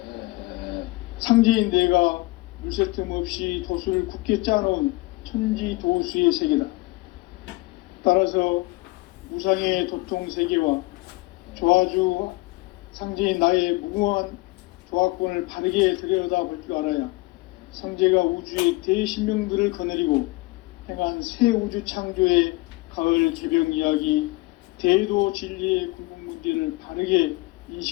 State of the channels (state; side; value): quieter; right; 22.8 dB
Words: 상제인 내가 물새 틈 없이 도수를 굳게 짜놓은 천지도수의 세계다. 따라서 무상의 도통 세계와 조화주 상제인 나의 무궁한 조화권을 바르게 들여다볼 줄 알아야 상제가 우주의 대신명들을 거느리고 행한 새 우주 창조의 가을 개병 이야기, 대도 진리의 궁극 문제를 바르게